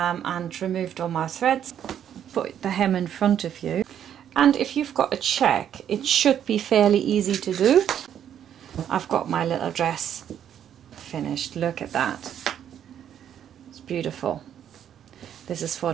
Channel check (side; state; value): left; quieter; 9.7 dB